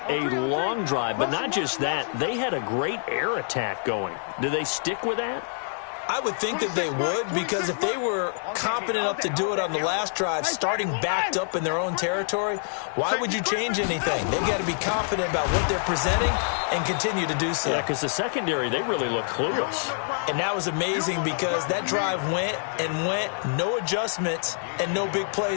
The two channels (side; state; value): right; silent; 61 dB below the other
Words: a long drive, but not just that. They had a great air attack going. Do they stick with that? I would think that they would, because if they were competent enough to do it on the last drive, starting backed up in their own territory, why would you change anything? They've got to be confident about what they're presenting and continue to do so. Yeah, because the secondary, they really look clueless. And that was amazing because that drive went and went, no adjustments and no big